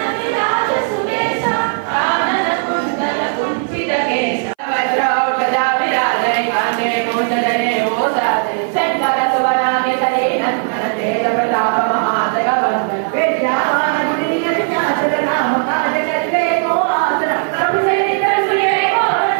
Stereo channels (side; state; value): left; silent; 61 dB below the other